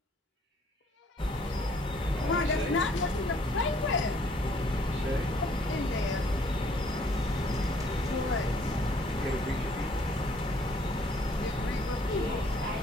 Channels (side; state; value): both; normal; correlation 0.62